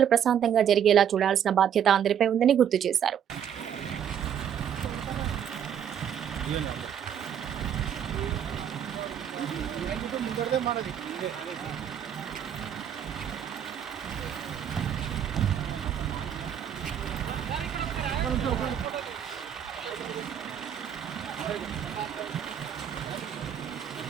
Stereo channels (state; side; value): quieter; left; 9.0 dB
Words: ప్రశాంతంగా జరిగేలా చూడాల్సిన బాధ్యత అందరిపై ఉందని గుర్తు చేశారు.